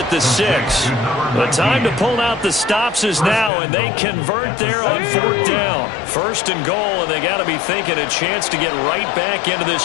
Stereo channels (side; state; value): right; drops out; at 3.5 s